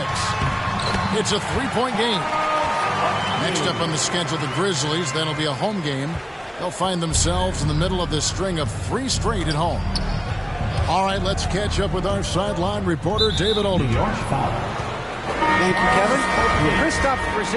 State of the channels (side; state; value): both; identical; correlation 1.00